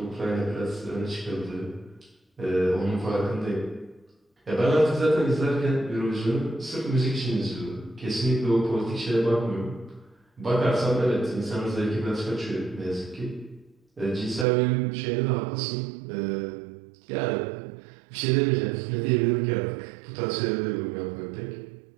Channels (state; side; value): drops out; left; at 14.5 s